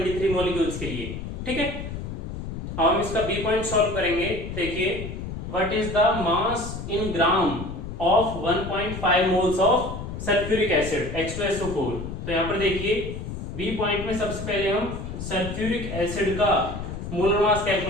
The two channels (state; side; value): noise; left; rumble, 7 dB below the sound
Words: molecules के लिए। ठीक है, अब हम इसका बी पॉइंट सॉल्व करेंगे। देखिए what is the mass in gram of 1.5 moles of sulphuric acid H2SO4। तो यहाँ पर देखिए बी पॉइंट में सबसे पहले हम सल्फ्यूरिक एसिड का मोलर मास